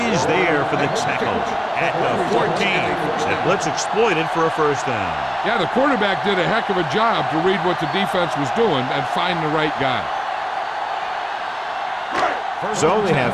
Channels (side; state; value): both; identical; correlation 1.00